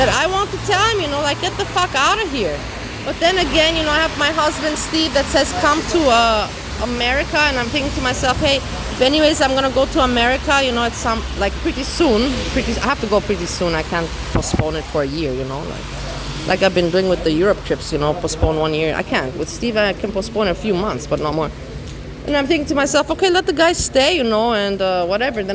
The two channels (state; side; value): identical; both; correlation 1.00